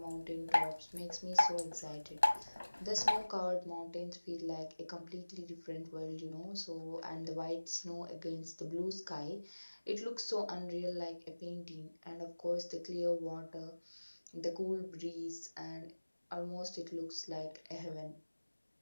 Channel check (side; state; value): both; inverted; correlation -1.00